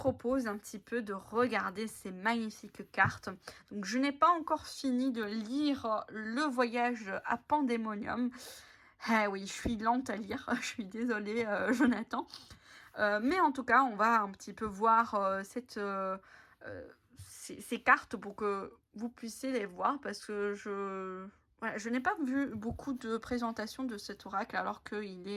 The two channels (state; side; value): identical; both; correlation 1.00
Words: un petit peu de regarder ces magnifiques cartes. Donc je n'ai pas encore fini de lire Le Voyage à Pandémonium. Eh oui, je suis lente à lire, je suis désolée Jonathan. Mais en tout cas, on va un petit peu voir ces cartes pour que vous puissiez les voir parce que je n'ai pas vu beaucoup de présentations de cet oracle alors qu'il